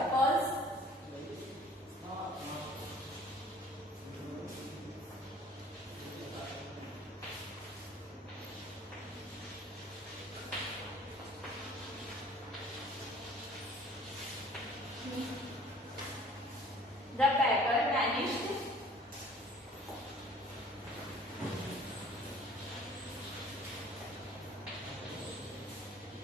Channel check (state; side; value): normal; both; correlation 0.51